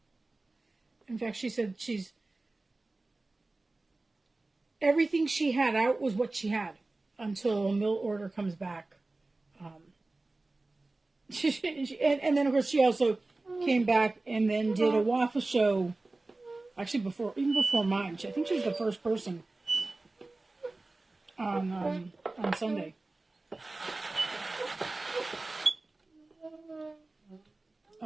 In fact, she said everything she had out was what she had until a mill order comes back. And then of course she also came back and then did a waffle show. Actually, even before mine, I think she was the first person on Sunday.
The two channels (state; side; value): quieter; left; 3.1 dB